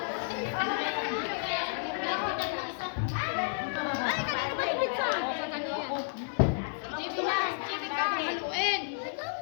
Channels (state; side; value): silent; right; digital silence